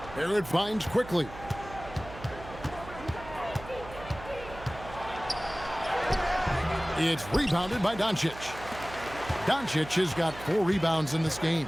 Barrett finds quickly. It's rebounded by Doncic. Doncic has got 4 rebounds in this game.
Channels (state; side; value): noise; right; hum, 14 dB below the sound